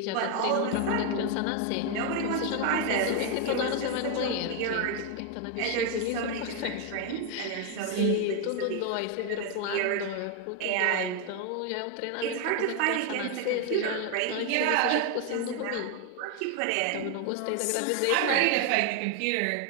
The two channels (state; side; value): different; both; correlation 0.01